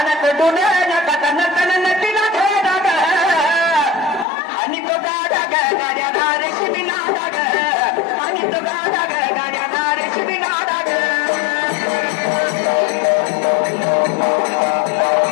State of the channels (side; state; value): right; drops out; at 4.2 s